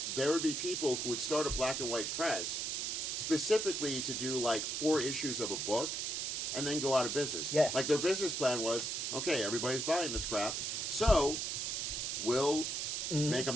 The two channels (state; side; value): noise; right; hiss, 1 dB below the sound